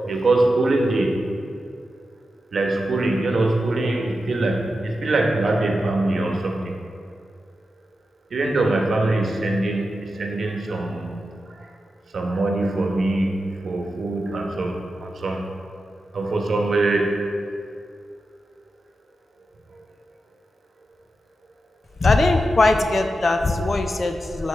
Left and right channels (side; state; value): both; normal; correlation 0.90